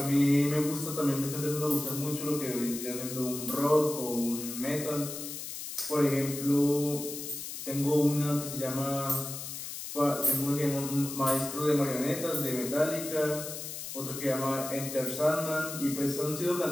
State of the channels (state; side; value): noise; left; hiss, 8 dB below the sound